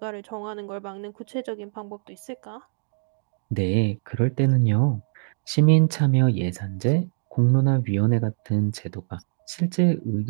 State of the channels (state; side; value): silent; left; digital silence